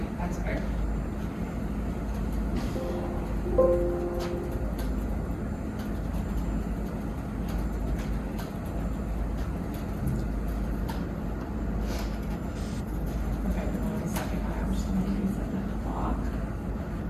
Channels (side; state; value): both; identical; correlation 1.00